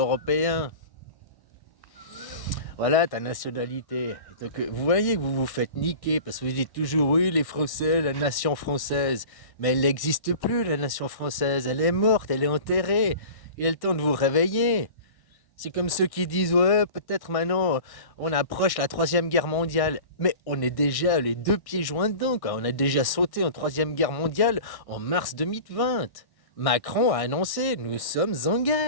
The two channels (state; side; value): late; right; 1.6 ms